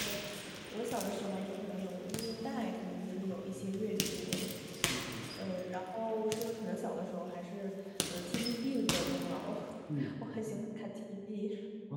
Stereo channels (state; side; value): identical; both; correlation 1.00